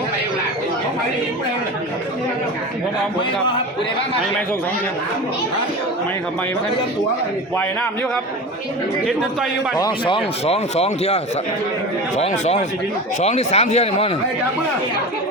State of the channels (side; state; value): both; normal; correlation 0.30